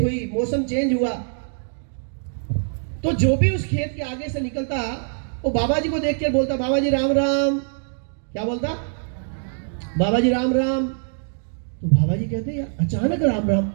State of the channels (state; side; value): silent; left; digital silence